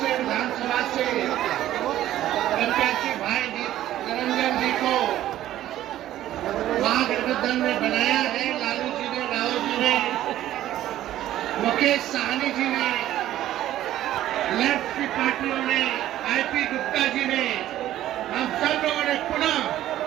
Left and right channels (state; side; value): quieter; left; 13.3 dB